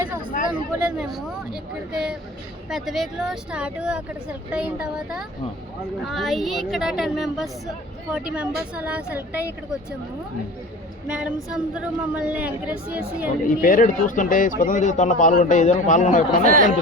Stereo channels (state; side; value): normal; both; correlation 0.38